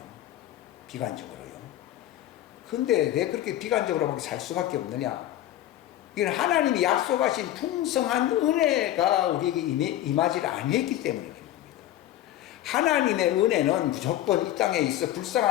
비관적으로요. 근데 왜 그렇게 비관적으로밖에 살 수밖에 없느냐? 이건 하나님이 약속하신 풍성한 은혜가 우리에게 임하지 아니했기 때문에 그런 겁니다. 하나님의 은혜는 무조건 이 땅에 있어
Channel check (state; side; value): quieter; right; 13.2 dB